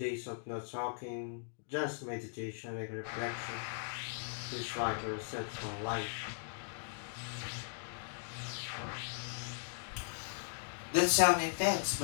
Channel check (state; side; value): silent; right; digital silence